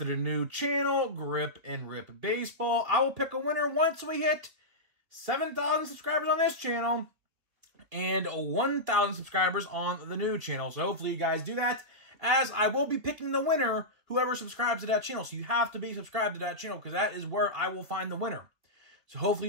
the new channel, Grip and Rip Baseball. I will pick a winner once we hit 7,000 subscribers on this channel and 1,000 subscribers on the new channel. So hopefully you guys do that, as I will be picking the winner, whoever subscribes to that channel. So you have to be subscribed to that channel because that is where I will find the winner. So hopefully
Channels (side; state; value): left; late; 3.3 ms